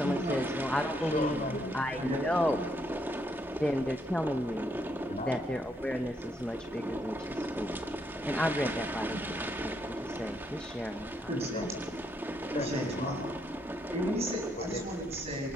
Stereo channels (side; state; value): both; normal; correlation 0.75